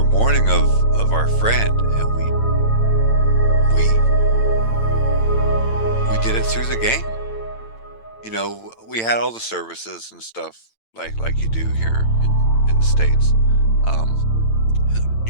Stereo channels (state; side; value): late; right; 8.9 ms